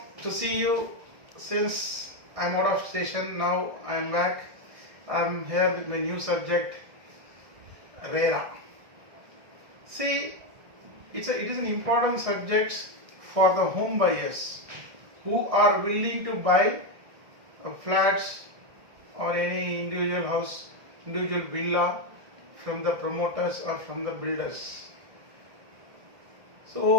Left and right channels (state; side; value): late; left; 1.6 ms